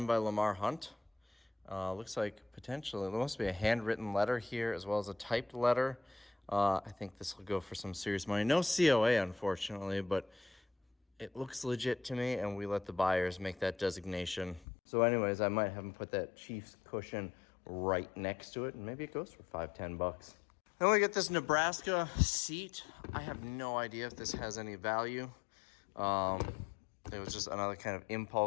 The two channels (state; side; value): drops out; right; at 14.7 s